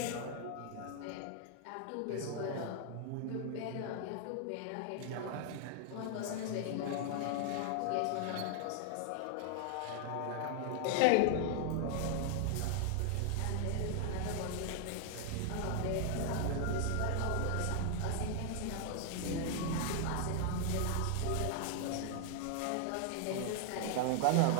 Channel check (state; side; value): different; both; correlation 0.00